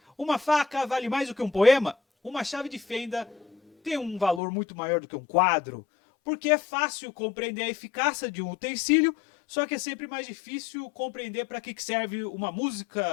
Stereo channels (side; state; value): right; drops out; at 4.4 s